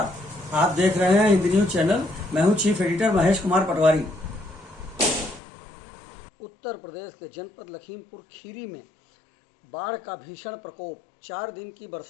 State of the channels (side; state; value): right; drops out; at 5.4 s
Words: आप देख रहे हैं हिंदी न्यूज चैनल। मैं हूं चीफ एडिटर महेश कुमार पटवारी। उत्तर प्रदेश के जनपद लखीमपुर खीरी में बाढ़ का भीषण प्रकोप। 4 दिन की